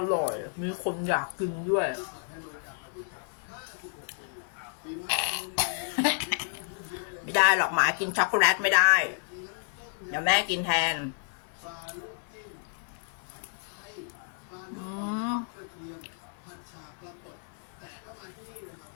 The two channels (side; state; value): right; silent; 57 dB below the other